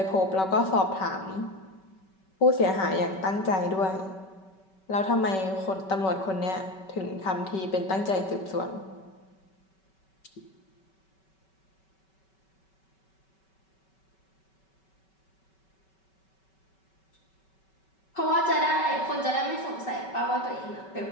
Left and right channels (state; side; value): late; right; 5.3 ms